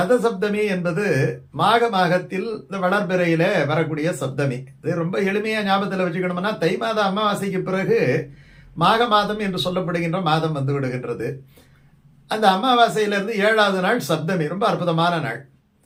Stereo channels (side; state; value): both; identical; correlation 1.00